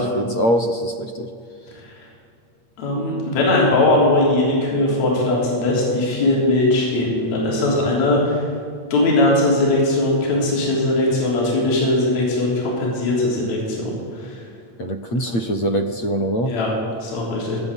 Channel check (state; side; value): late; right; 8.6 ms